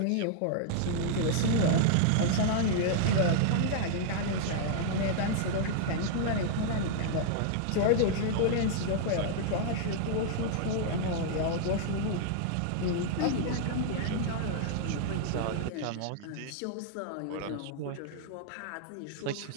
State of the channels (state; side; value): different; both; correlation -0.01